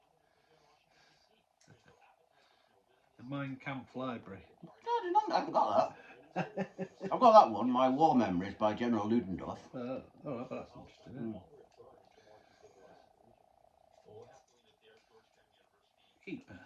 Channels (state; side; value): identical; both; correlation 1.00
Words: The Mein Kampf Library. I haven't got that. I've got that one, My War Memories by General Ludendorff. Oh, but that's interesting, isn't it? Keep